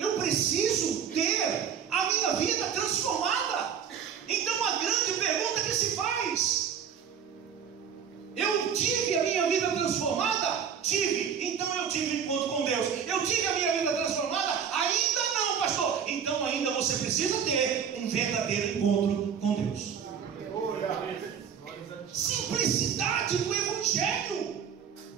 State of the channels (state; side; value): quieter; left; 7.7 dB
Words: preciso ter a minha vida transformada. Então a grande pergunta que se faz: eu tive a minha vida transformada? Tive. Então eu tive encontro com Deus. Eu tive a minha vida transformada? Ainda não, pastor. Então ainda você precisa ter um verdadeiro encontro com Deus. Simplicidade do Evangelho.